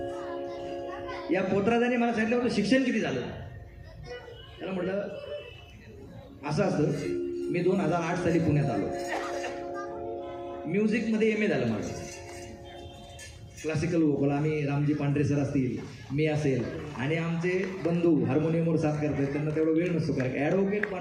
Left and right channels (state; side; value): identical; both; correlation 1.00